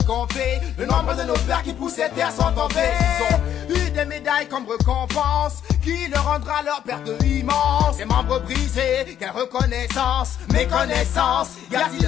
compter le nombre de nos pères qui poussaient terre sont tombés. Ils ont eu des médailles comme récompense qui leur rendra leur perte immense. Les membres brisés, quelle reconnaissance, méconnaissance. Y a-t-il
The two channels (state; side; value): quieter; right; 10.2 dB